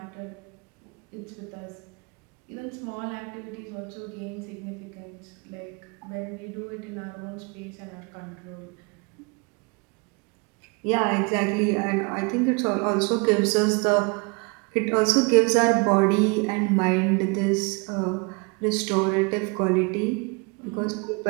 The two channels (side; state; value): left; quieter; 30.8 dB